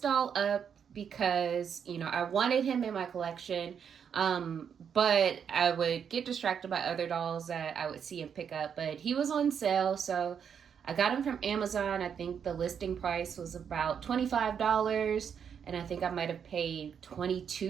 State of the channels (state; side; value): quieter; left; 7.6 dB